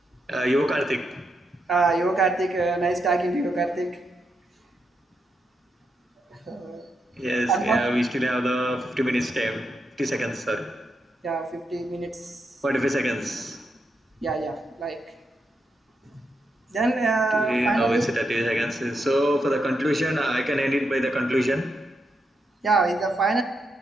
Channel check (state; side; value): normal; both; correlation 0.83